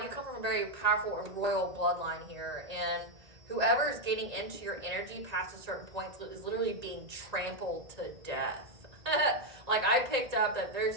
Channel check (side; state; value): left; late; 1.9 ms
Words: you come from a very powerful and royal bloodline here. And whoever is getting into your energy past a certain point is literally being trampled to death. Like, I picked up that there's